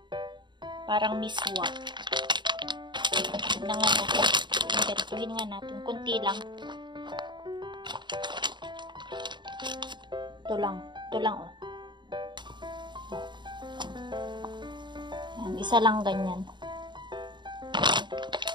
Parang miswa. Tignan nga natin. Ganituhin nga natin. Kunti lang. Ito lang. Ito lang, oh. Yan, isa lang ganyan.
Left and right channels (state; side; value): late; left; 0.22 ms